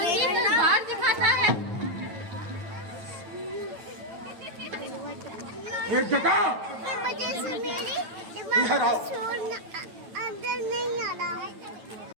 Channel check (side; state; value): left; late; 9.0 ms